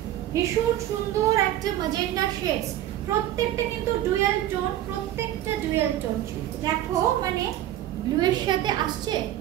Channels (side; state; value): left; quieter; 13.0 dB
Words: ভীষণ সুন্দর একটা ম্যাজেন্টা শেডস, প্রত্যেকটা কিন্তু ডুয়াল টোন, প্রত্যেকটা ডুয়াল টোন। দেখো মানে ব্লু এর সাথে আসছে,